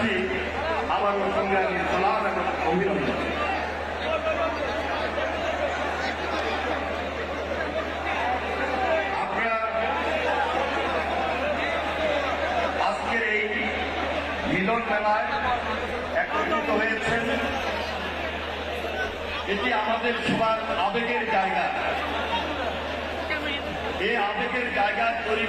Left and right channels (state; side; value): identical; both; correlation 1.00